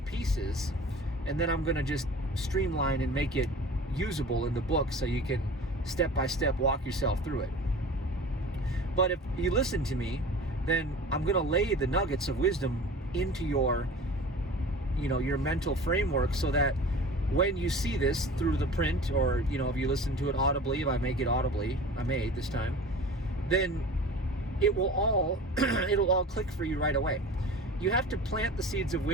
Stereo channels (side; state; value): both; normal; correlation 0.39